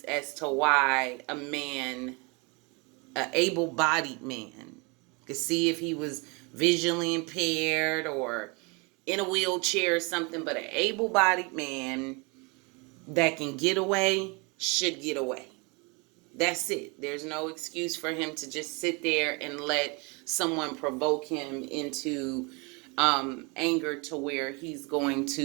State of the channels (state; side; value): quieter; left; 29.8 dB